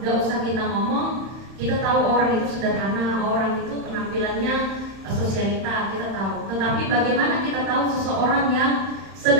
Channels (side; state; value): left; late; 31 ms